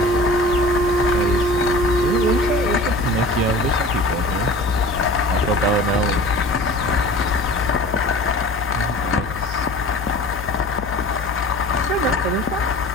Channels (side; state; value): left; noise; hum, 11 dB below the sound